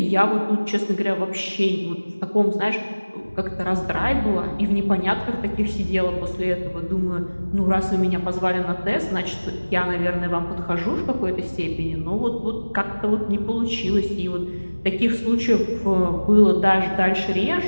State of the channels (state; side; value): inverted; both; correlation -1.00